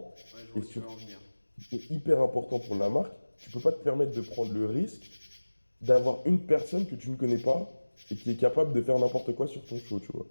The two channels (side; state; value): both; inverted; correlation -1.00